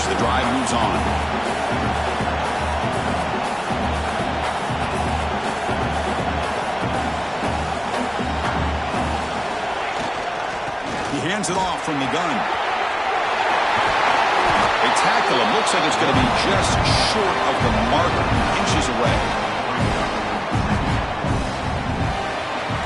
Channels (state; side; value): identical; both; correlation 1.00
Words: The drive moves on. He hands it off from the gun. They tackle him. Looks like it's going to be just short of the marker. Inches away.